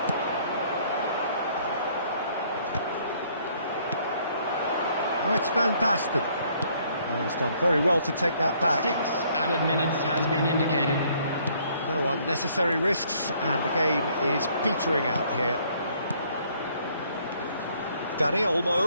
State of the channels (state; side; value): inverted; both; correlation -0.64